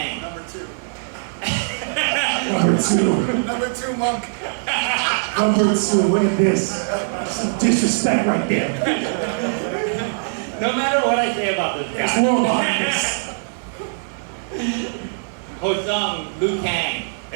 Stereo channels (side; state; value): left; silent; 65 dB below the other